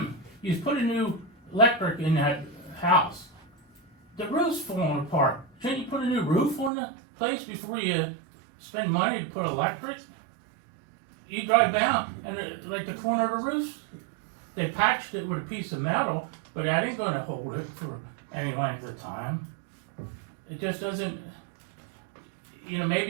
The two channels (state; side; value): drops out; left; at 6.7 s